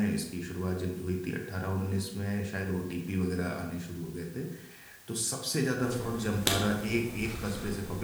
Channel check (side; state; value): both; identical; correlation 1.00